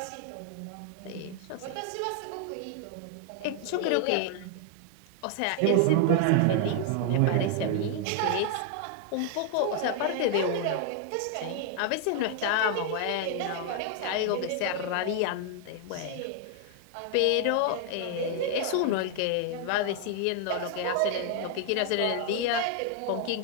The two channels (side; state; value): both; different; correlation 0.00